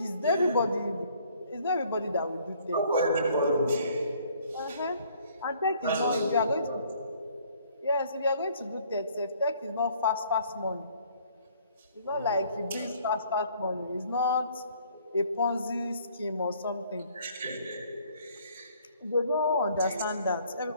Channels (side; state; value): both; inverted; correlation -0.60